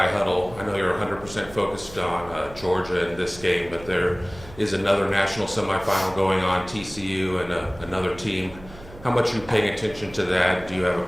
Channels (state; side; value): noise; right; hum, 18 dB below the sound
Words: Huddle. I know you're 100% focused on Georgia in this game, but there is another national semifinal going on, TCU and another team. How much are you paying attention to that? Do you have a